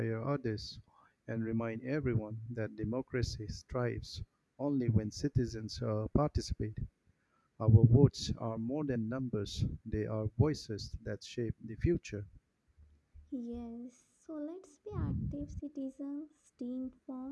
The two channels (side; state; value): both; identical; correlation 1.00